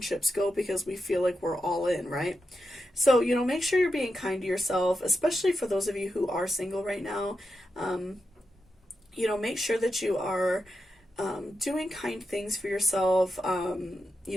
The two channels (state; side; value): normal; both; correlation 0.87